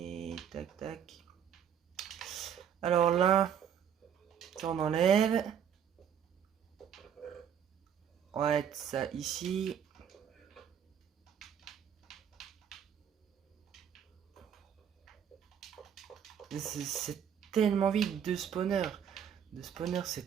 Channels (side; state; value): left; quieter; 8.6 dB